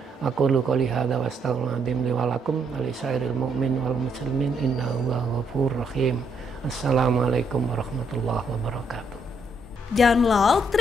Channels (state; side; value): normal; both; correlation 0.74